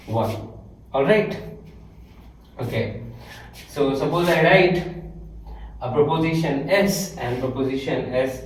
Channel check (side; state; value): both; identical; correlation 1.00